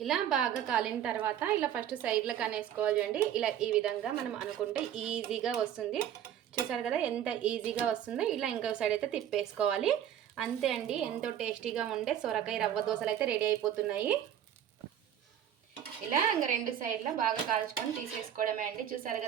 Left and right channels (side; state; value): left; quieter; 10.2 dB